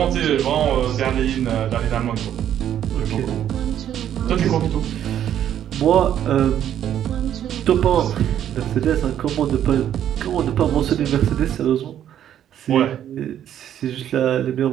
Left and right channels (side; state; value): left; quieter; 10.4 dB